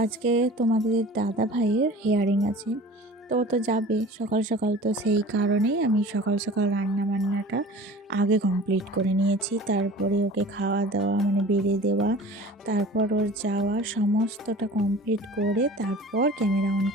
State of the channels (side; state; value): both; normal; correlation 0.42